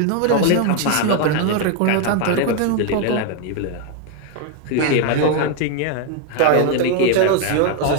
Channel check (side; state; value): both; different; correlation 0.01